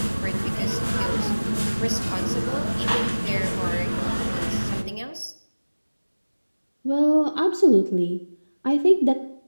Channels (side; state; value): both; inverted; correlation -1.00